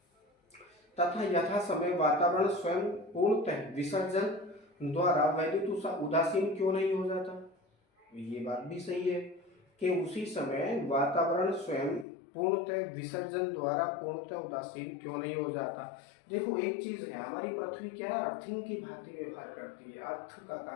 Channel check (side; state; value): right; drops out; at 12.1 s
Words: तथा यथा समय वातावरण स्वयं पूर्णतः विसर्जन द्वारा वैद्युत उदासीन क्यों नहीं हो जाता? ये बात भी सही है कि उसी समय वातावरण स्वयं पूर्णतः विसर्जन द्वारा पूर्णतः उदासीन क्यों नहीं हो जाता। देखो एक चीज है, हमारी पृथ्वी क्या है? अर्थिंग की भांति व्यवहार करती है, अर्थ का